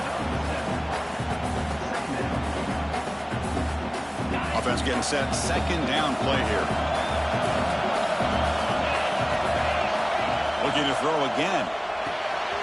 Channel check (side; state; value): both; identical; correlation 1.00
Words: Offense getting set. Second down play here. Looking to throw again.